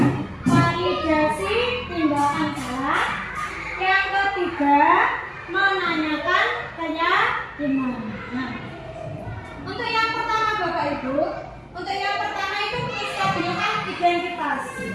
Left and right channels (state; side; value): identical; both; correlation 1.00